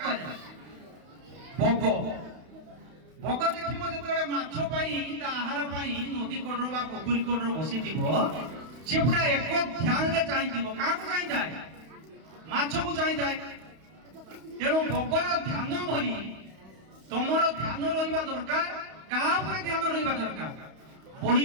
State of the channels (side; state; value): left; late; 31 ms